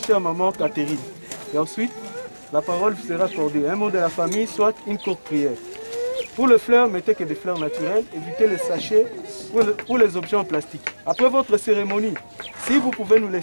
maman Catherine. Et ensuite, la parole vous sera accordée. Un mot de la famille, soit une courte prière. Pour le fleur, mettez que des fleurs naturelles. Évitez les sachets pour les objets en plastique. Après votre cérémonie, si vous pouvez nous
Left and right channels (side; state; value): both; inverted; correlation -1.00